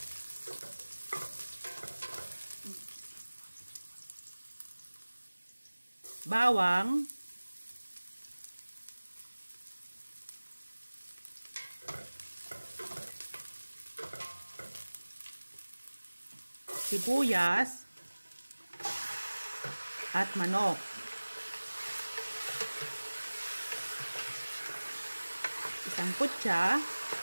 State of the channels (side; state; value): both; inverted; correlation -1.00